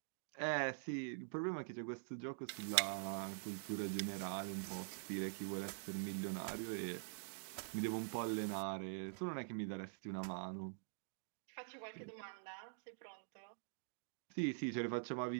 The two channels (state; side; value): silent; left; digital silence